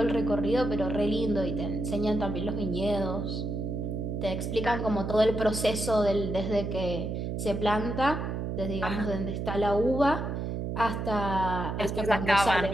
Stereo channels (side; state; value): right; noise; hum, 3 dB below the sound